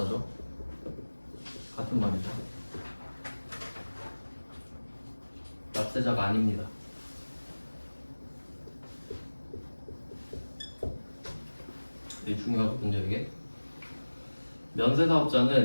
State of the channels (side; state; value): both; inverted; correlation -1.00